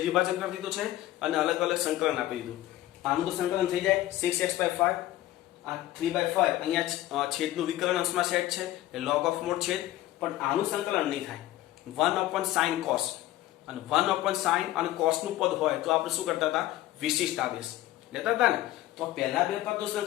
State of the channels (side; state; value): right; quieter; 15.2 dB